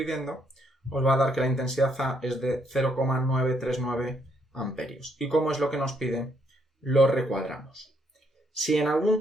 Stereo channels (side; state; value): both; normal; correlation 0.73